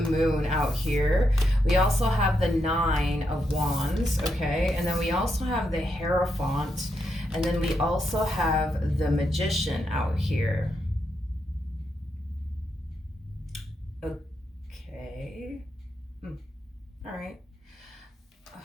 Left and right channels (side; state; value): both; normal; correlation 0.82